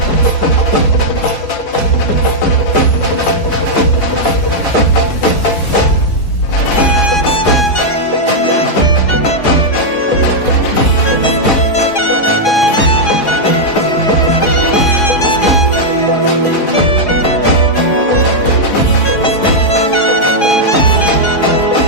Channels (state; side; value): late; right; 4.8 ms